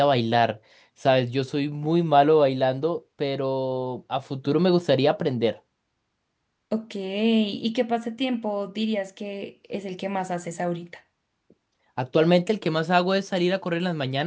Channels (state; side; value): identical; both; correlation 1.00